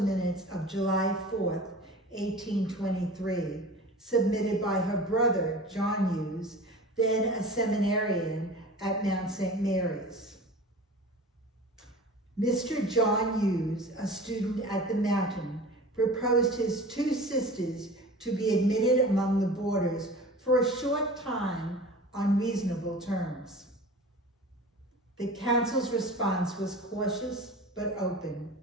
of July 4th, 1823, submitted by her brother, John Hughes, then a seminarian at Mount St. Mary's. Mr. John Hughes, a student at the Mountain, proposed his 2 sisters to be admitted among the boarders for a short time on reasonable terms. The council's response was cautious but open.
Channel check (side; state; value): both; normal; correlation 0.38